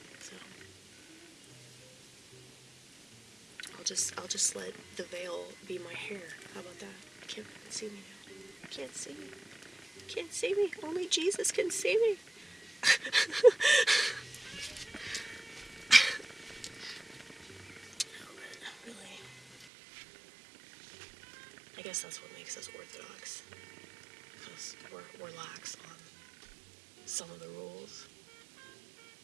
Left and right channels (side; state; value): left; drops out; at 19.7 s